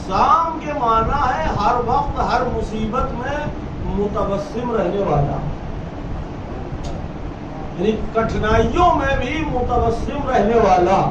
کے معنی ہے ہر وقت ہر مصیبت میں متبسم رہنے والا، یعنی کٹھنائیوں میں بھی متبسم رہنے والا،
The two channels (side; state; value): both; identical; correlation 1.00